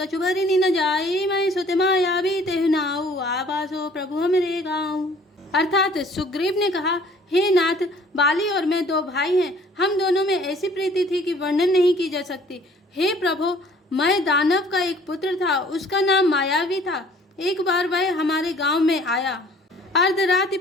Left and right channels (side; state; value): both; normal; correlation 0.55